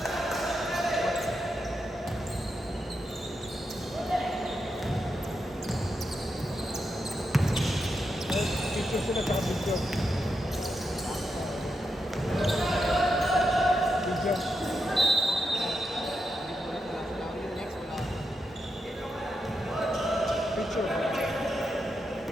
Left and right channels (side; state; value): both; normal; correlation 0.85